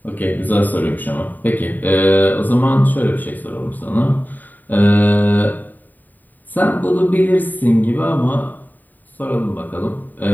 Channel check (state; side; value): late; right; 0.087 ms